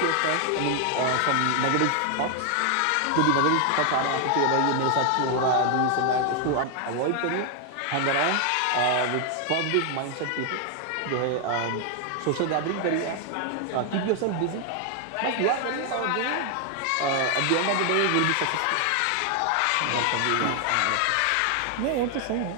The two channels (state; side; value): different; both; correlation 0.00